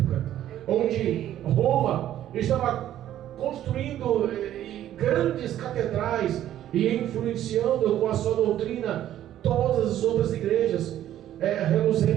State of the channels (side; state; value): left; quieter; 12.0 dB